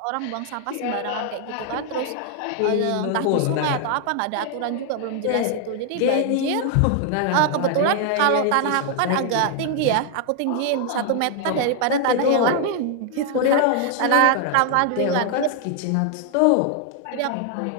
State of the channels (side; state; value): both; different; correlation 0.00